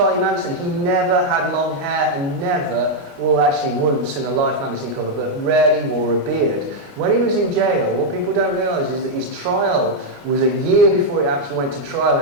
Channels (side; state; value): left; late; 29 ms